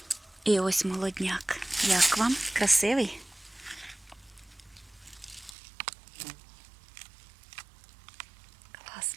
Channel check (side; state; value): left; drops out; at 5.5 s